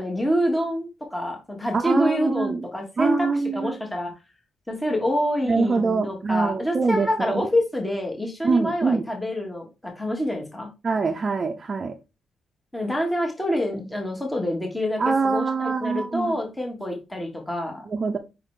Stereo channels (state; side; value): normal; both; correlation 0.90